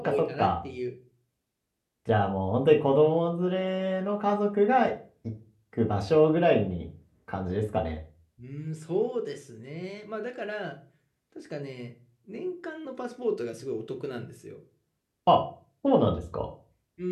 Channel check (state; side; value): identical; both; correlation 1.00